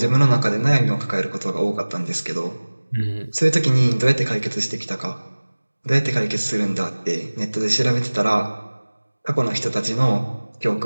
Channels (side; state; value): both; inverted; correlation -1.00